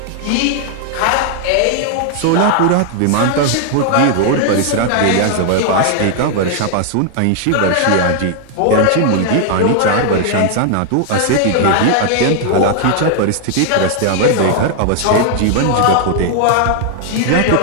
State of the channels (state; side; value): different; both; correlation 0.00